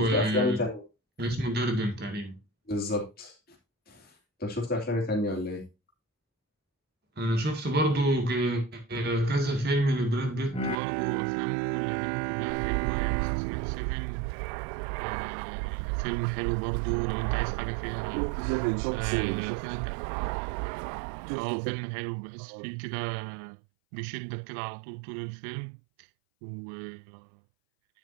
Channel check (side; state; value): left; drops out; at 10.8 s